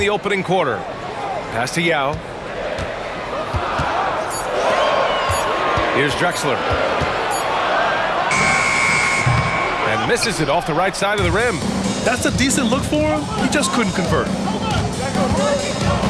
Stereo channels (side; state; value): both; identical; correlation 1.00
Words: opening quarter. Pass to Yao. Here's Drexler. And misses it off the right side of the rim. That's a decent look for him. He just couldn't convert.